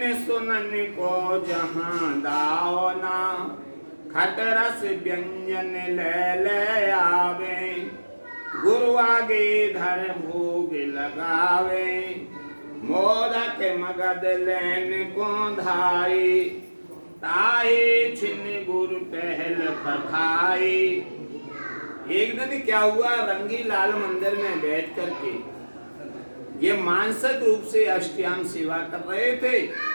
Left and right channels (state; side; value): inverted; both; correlation -1.00